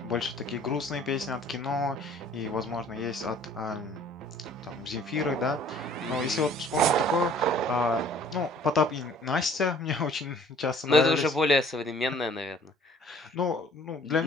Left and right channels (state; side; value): normal; both; correlation 0.54